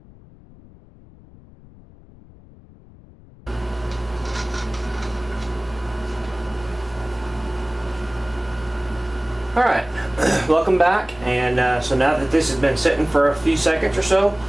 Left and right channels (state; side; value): noise; left; rumble, 22 dB below the sound